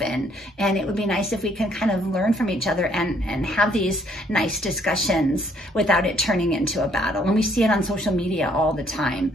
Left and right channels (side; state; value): both; normal; correlation 0.66